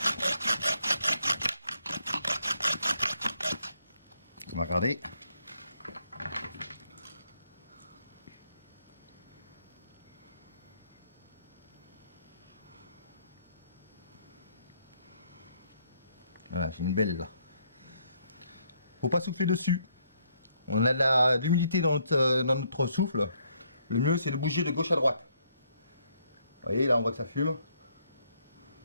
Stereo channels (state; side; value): inverted; both; correlation -0.71